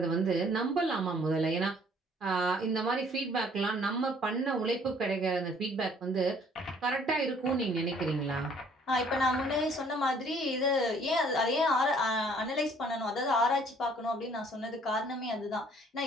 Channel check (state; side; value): normal; both; correlation 0.59